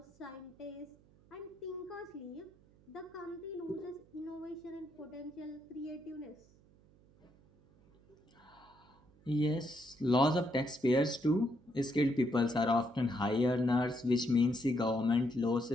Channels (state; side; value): noise; right; hum, 28 dB below the sound